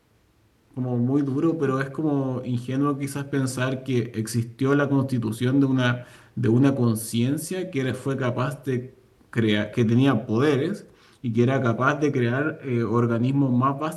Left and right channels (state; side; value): identical; both; correlation 1.00